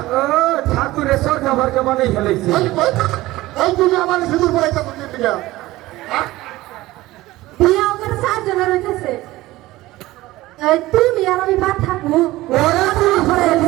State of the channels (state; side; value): quieter; left; 17.9 dB